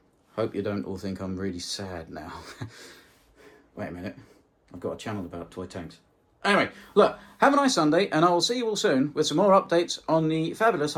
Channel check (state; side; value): identical; both; correlation 1.00